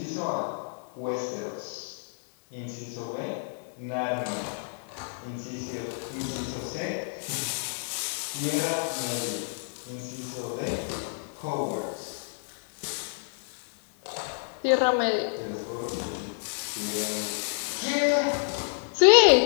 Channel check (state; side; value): silent; right; 56 dB below the other